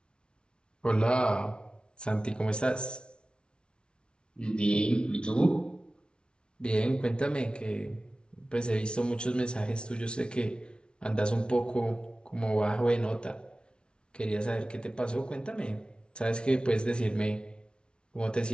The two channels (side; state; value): right; late; 0.057 ms